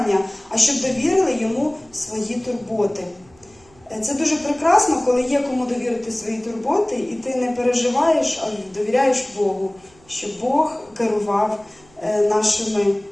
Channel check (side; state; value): right; noise; hum, 29 dB below the sound